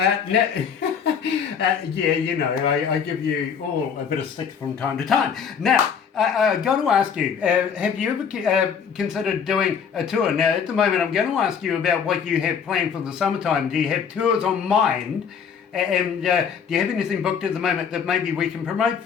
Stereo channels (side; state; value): right; quieter; 7.0 dB